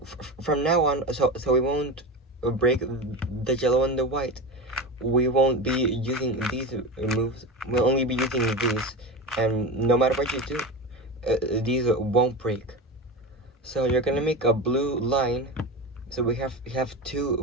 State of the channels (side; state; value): both; normal; correlation 0.23